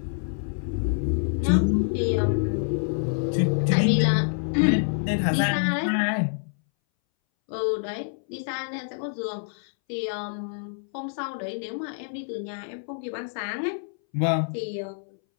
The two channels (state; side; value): silent; right; 60 dB below the other